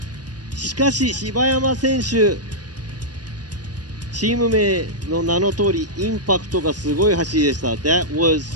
しかし柴山選手チーム名の名の通りインパクトがすごい走りでした。 That was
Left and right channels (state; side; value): late; left; 0.69 ms